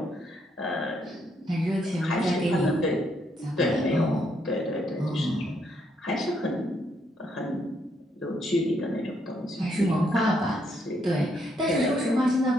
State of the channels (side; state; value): both; normal; correlation 0.74